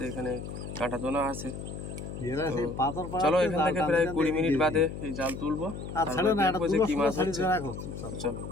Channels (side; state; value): left; noise; hum, 8 dB below the sound